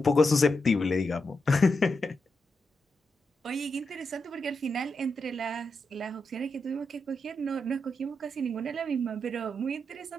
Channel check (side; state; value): both; normal; correlation 0.85